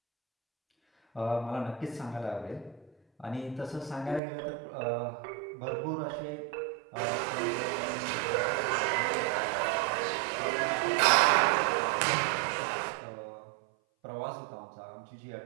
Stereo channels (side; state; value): left; drops out; at 4.2 s